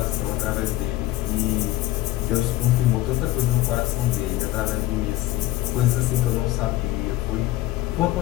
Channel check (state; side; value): quieter; right; 16.4 dB